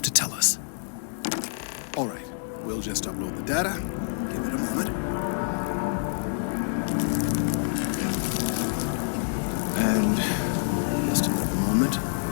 to tell us. All right, we'll just upload the data. Give it a moment. And just another moment.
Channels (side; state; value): right; silent; digital silence